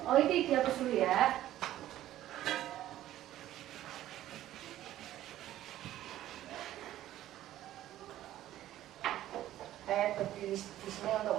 Oh, itu dihapus dulu ya. di sini untuk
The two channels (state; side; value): quieter; left; 13.5 dB